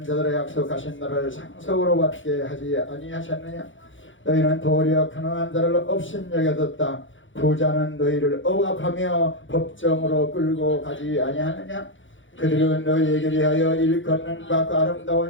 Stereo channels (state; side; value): late; right; 0.56 ms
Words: 자들의 약속하신 나라를 상속으로 받게 하지 아니하셨느냐. 너희는 도리어 가난한 자를 업신여겨뒀다. 부자는 너희를 억압하며 법정으로 끌고 가지 아니하느냐. 그들은 너희에게 대하여 일컫는 바 그